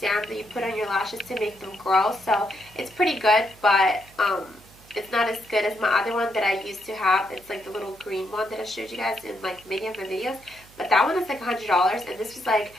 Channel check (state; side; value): noise; right; hum, 25 dB below the sound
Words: that you put on your lashes to make them grow. So it's pretty good, but it's not as good as my other one that I used to have. It's like the little green one that I showed you guys in like many of my videos. But that one is like $100, and this was like